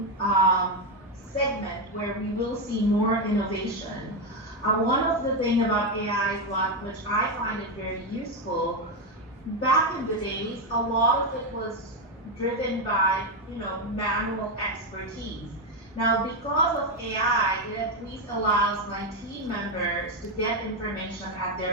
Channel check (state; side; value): normal; both; correlation 0.07